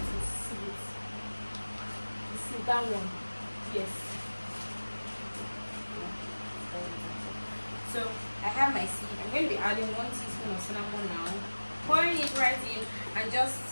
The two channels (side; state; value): both; inverted; correlation -1.00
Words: sieve it. You see that one? Yes. So I have my sieve. I'm going to be adding 1 teaspoon of cinnamon now, pouring it right in, and I'm